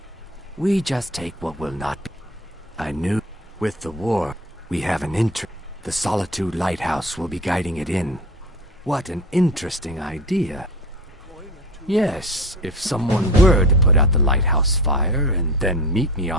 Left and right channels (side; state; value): both; normal; correlation 0.35